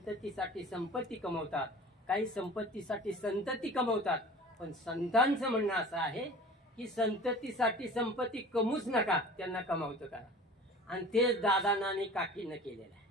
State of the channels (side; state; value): both; normal; correlation 0.41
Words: संपत्ती कमवतात, काही संपत्तीसाठी संतती कमवतात, पण संतांचं म्हणणं असं आहे की संततीसाठी संपत्ती कमवूच नका, त्यांना कमावतं करा, आणि तेच दादांना आणि काकीनं केलेलं आहे।